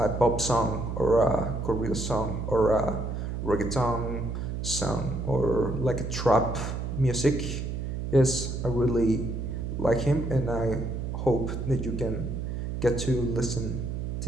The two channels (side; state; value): right; noise; hum, 4 dB below the sound